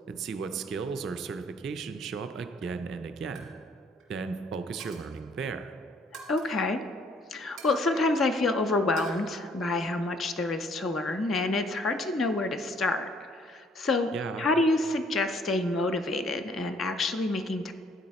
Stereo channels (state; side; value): normal; both; correlation 0.62